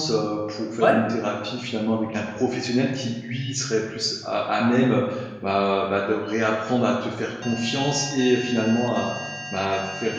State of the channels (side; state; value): both; identical; correlation 1.00